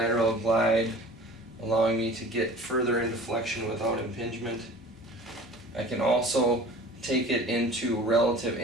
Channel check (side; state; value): both; normal; correlation 0.43